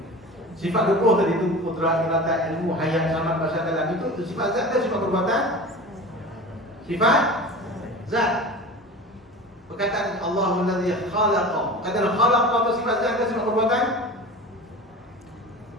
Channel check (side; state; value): both; normal; correlation 0.34